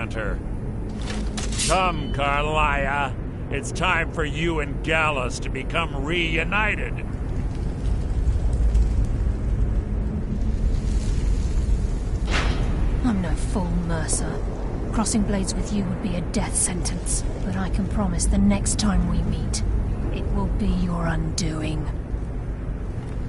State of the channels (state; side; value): identical; both; correlation 1.00